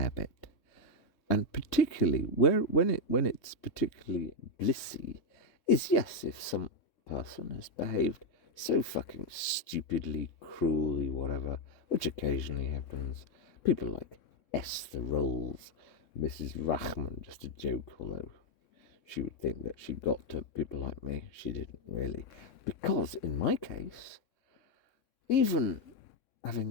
bit. And particularly when it's particularly blissy is, yes, if some person has behaved so fucking stupidly, cruelly, whatever, which occasionally happens. People like Esther Rolls, Mrs. Rachman, just a joke, although she would think that she got to people like me. She didn't really. Because in my case, even having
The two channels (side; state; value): right; late; 3.6 ms